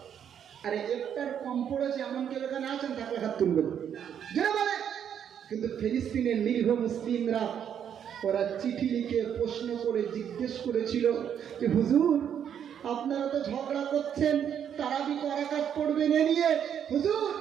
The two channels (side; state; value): left; quieter; 8.8 dB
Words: আরে ইফতার কম পড়েছে এমন কেউ এখানে আছেন? তাকে হাত তুলবেন, যারা বলে। কিন্তু ফিলিস্তিনের নিরীহ মুসলিমরা, ওরা চিঠি লিখে প্রশ্ন করে জিজ্ঞেস করেছিল যে হুজুর আপনারা তো ঝগড়া করছেন, তারাবি রাকাত পড়বেন এ নিয়ে, হুজুর